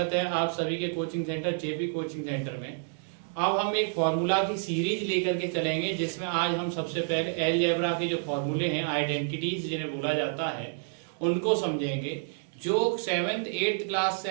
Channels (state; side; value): silent; left; digital silence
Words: है आप सभी के coaching centre JP coaching centre में। अब हम एक फॉर्मूला की सीरीज लेकर के चलेंगे, जिसमें आज हम सबसे पहले अलजेब्रा के जो फॉर्मूले हैं, आइडेंटिटीज जिन्हें बोला जाता है, उनको समझेंगे। जो 7th 8th क्लास